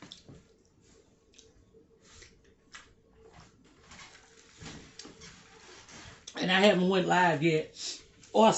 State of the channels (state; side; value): identical; both; correlation 1.00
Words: And I haven't went live yet or